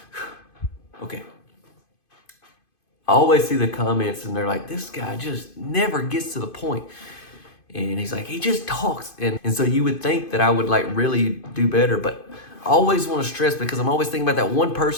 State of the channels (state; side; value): late; right; 2.5 ms